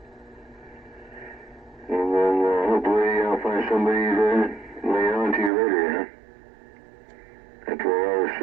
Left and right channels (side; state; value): left; drops out; at 5.5 s